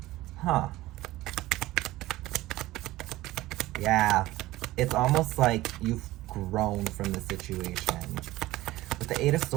Huh. Yeah, it's almost like you've grown from the situation. With the Eight of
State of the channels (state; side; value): quieter; left; 17.3 dB